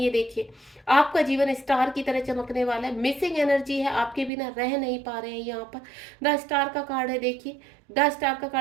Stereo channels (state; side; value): drops out; left; at 4.3 s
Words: ये देखिए आपका जीवन स्टार की तरह चमकने वाला है, मिसिंग एनर्जी है, आपके बिना रह नहीं पा रहे हैं। यहाँ पर द स्टार का कार्ड है, देखिए द स्टार का